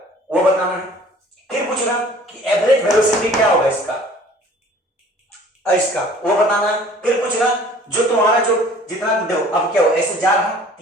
वो बताना है। फिर पूछ रहा कि एवरेज वेलोसिटी क्या होगा इसका वो बताना है। फिर पूछ रहा जो तुम्हारा जो जितना देखो अब क्या हो, ऐसे जा रहा,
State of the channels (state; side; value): normal; both; correlation 0.50